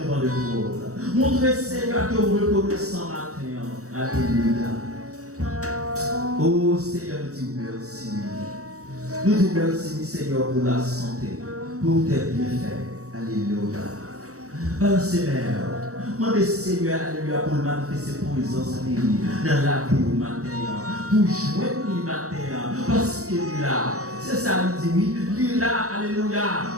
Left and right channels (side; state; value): left; late; 0.65 ms